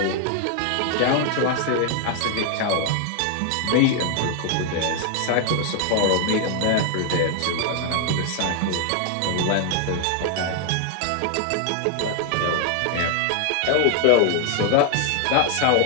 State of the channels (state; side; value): different; both; correlation 0.00